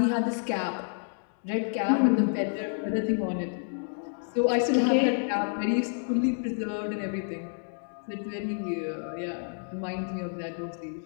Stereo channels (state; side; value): silent; right; digital silence